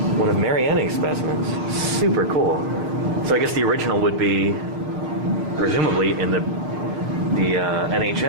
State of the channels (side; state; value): left; late; 6.4 ms